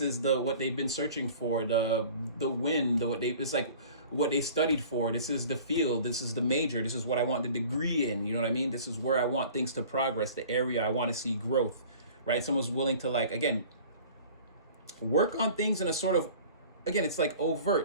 is what they've been searching for, the win, it's like what they studied for. This is the field. This is the major. This is what I want the degree in. You know what I mean? This is where I want things to progress, the area I want to see growth, right? Someone's willing to like, again, work on things in a sort of, again, it's like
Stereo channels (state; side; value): inverted; both; correlation -0.46